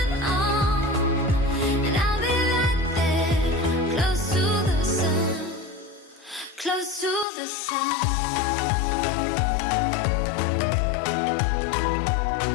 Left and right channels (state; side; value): drops out; right; at 7.2 s